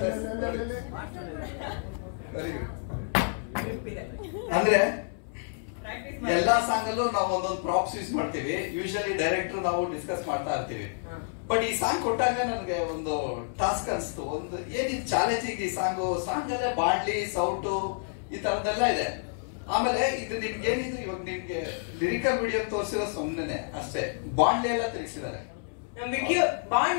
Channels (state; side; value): silent; right; 58 dB below the other